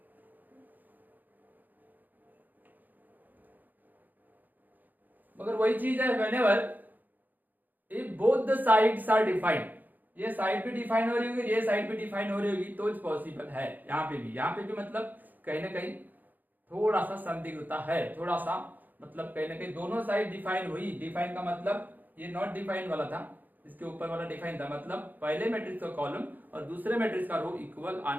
मगर वही चीज है whenever if both the sides are defined, ये साइड भी डिफाइन हो रही होगी, ये साइड भी डिफाइन हो रही होगी तो पॉसिबल है। यहाँ पे भी मतलब कहीं ना कहीं थोड़ा सा संदिग्धता है, थोड़ा सा मतलब कहीं ना कहीं दोनों साइड डिफाइन हुई। डिफाइन का मतलब ये नॉट डिफाइन वाला था, इसके ऊपर वाला डिफाइन था, मतलब पहले मैट्रिक्स का कॉलम और दूसरे मैट्रिक्स का रो इक्वल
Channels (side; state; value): left; late; 0.084 ms